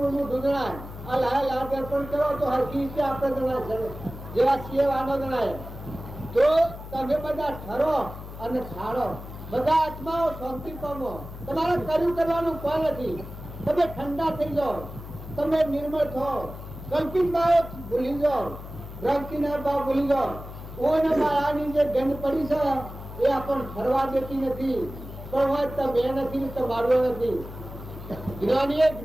મૂઠું જણાય આ લાલ દર્પણ કરો તો હરકી રીતે આપણે જણાય જેવા છીએ વાનો જણાય। તો તમે બધા ઠરો અને ખાડો બધા આત્માઓ શાંતિ પામો તમારે કર્યું કરવાનું કોઈ નથી તમે ઠંડા થઈ જાઓ તમે નિર્મળ થાઓ કલ્પિત ભાવ ભૂલી જાઓ ભ્રાંતિના ભાવ ભૂલી જાઓ ઓને માયાની જે ગંધ પડી છે એ આપણને ફરવા દેતી નથી પણ હોય તમે નથી તો મારવો નથી। જ્ઞાનીએ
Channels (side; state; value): left; noise; hum, 12 dB below the sound